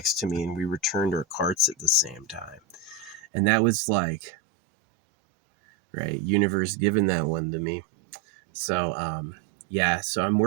to me, and we returned our carts at the same time. And that was like, right, universe giving that one to me. So Yeah, so I'm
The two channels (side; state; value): left; drops out; at 3.2 s